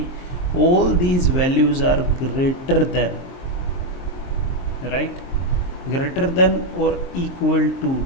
all these values are greater than, right, greater than or equal to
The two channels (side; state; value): right; late; 23 ms